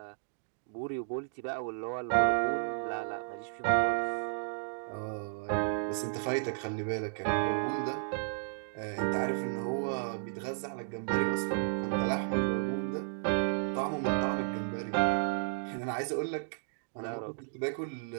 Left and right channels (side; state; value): left; silent; digital silence